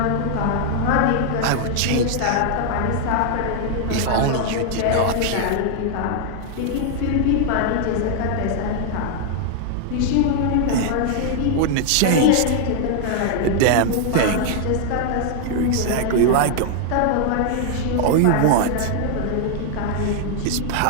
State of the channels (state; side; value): different; both; correlation 0.00